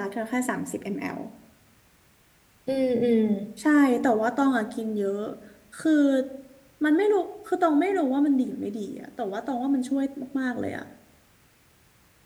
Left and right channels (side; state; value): both; identical; correlation 1.00